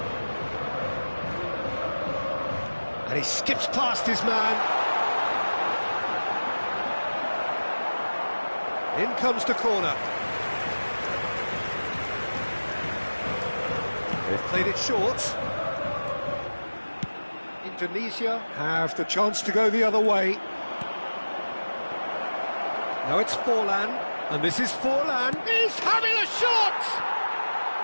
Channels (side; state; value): both; inverted; correlation -1.00